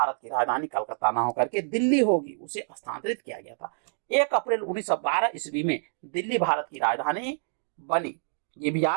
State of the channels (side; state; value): left; silent; digital silence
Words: की राजधानी कलकत्ता न होकर के दिल्ली होगी, उसे स्थानांतरित किया गया था। 1 अप्रैल 1912 ईस्वी में दिल्ली भारत की राजधानी बनी, ये भी